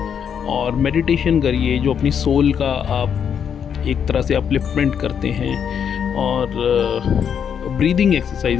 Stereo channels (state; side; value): quieter; right; 7.8 dB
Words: और मेडिटेशन करिए, जो अपनी सोल का आप एक तरह से अपलिफ्टमेंट करते हैं और ब्रीदिंग